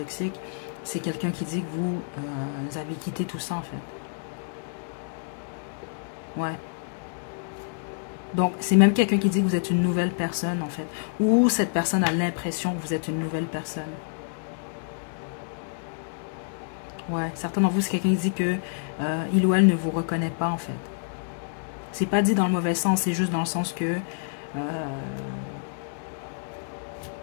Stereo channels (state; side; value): silent; right; digital silence